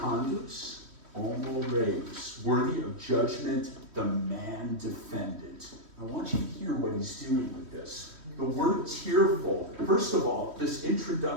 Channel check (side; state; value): left; late; 3.1 ms